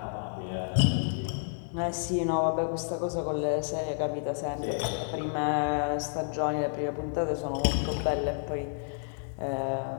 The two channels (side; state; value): right; silent; digital silence